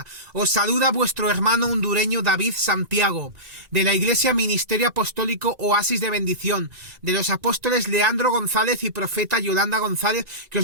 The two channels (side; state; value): left; late; 2.0 ms